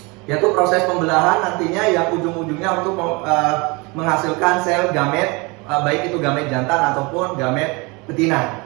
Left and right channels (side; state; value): left; quieter; 27.2 dB